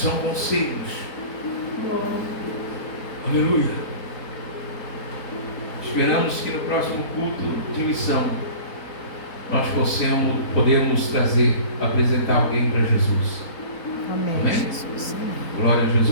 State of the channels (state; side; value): late; right; 4.2 ms